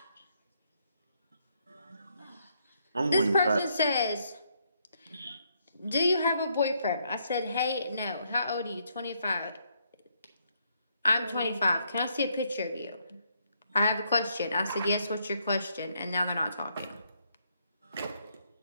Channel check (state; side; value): inverted; both; correlation -0.74